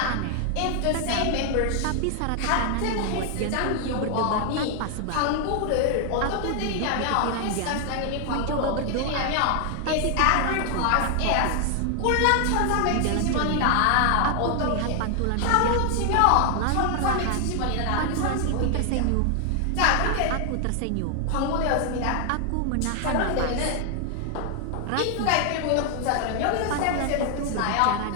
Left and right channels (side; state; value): both; different; correlation 0.00